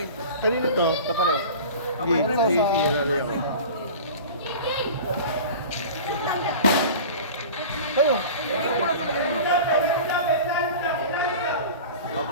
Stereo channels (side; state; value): both; inverted; correlation -0.36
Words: Kanino to? Kapareho. Kayo.